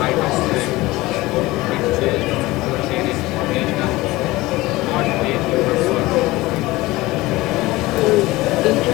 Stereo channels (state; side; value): quieter; right; 19.6 dB